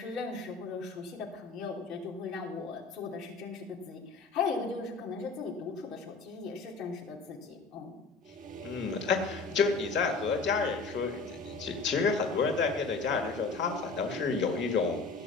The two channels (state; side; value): quieter; right; 4.2 dB